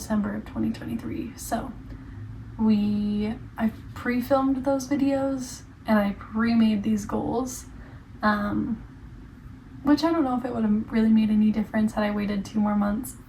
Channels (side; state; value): both; identical; correlation 1.00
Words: of 2023. So I pre-filmed those videos and I pre-made these goals, which I don't know if it would have really made any difference had I waited 2 more months,